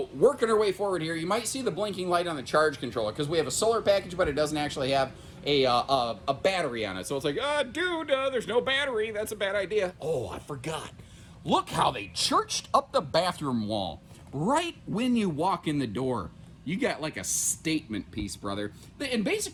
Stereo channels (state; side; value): identical; both; correlation 1.00